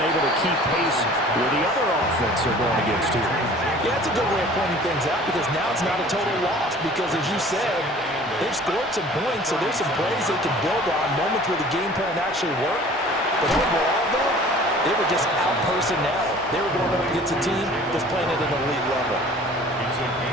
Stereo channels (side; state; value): both; normal; correlation 0.47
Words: able to keep pace with the other offense they're going against here. Yeah, that's a good way of pointing things out because now it's not a total loss because, as you said, they've scored some points, so there's some plays they can build on, moments where the game plan actually worked. But overall, though, they were just out-personnel. They were going up against a team that's playing at an elite level.